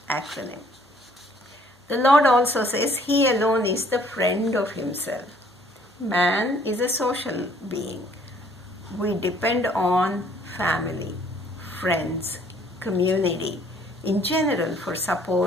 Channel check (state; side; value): normal; both; correlation 0.60